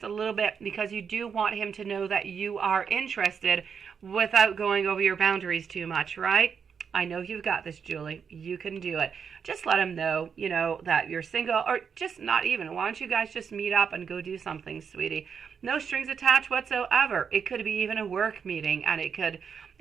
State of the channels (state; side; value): quieter; left; 6.7 dB